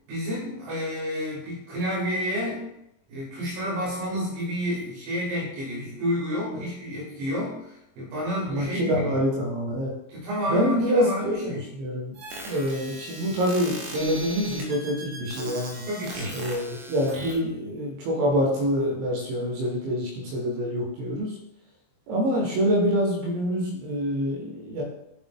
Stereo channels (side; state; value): left; late; 22 ms